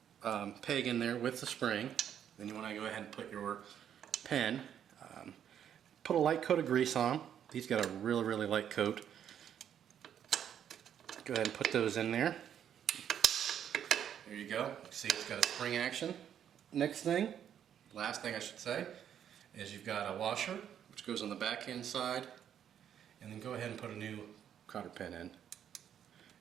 peg in there with the spring. Then you want to go ahead and put your pen. Put a light coat of grease on. These got a really light coat. Go ahead and put those in there. There you go. You see it's got a spring action. Next thing, last thing I should say, is you've got a washer which goes on the back end side, and then go ahead and put a new cotter pin in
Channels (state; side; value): quieter; left; 9.3 dB